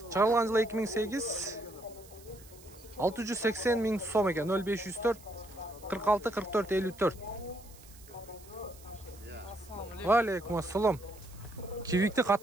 Чыгарылган жылы 2008. 680 000 сом экен. 0504 46 44 54. Алейкум ассалам. Civic'ти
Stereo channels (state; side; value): noise; right; hiss, 22 dB below the sound